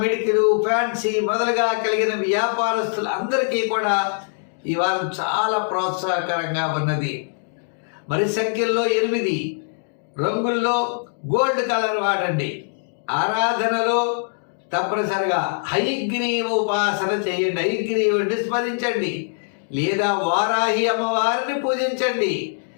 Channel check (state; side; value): silent; right; digital silence